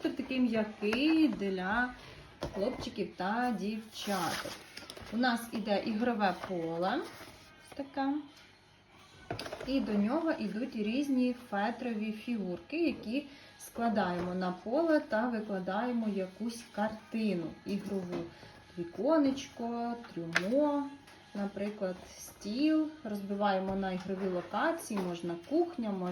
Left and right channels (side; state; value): both; identical; correlation 1.00